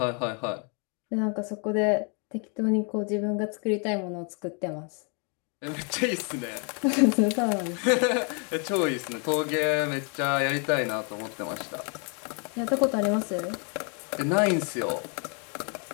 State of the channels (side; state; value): right; quieter; 37.4 dB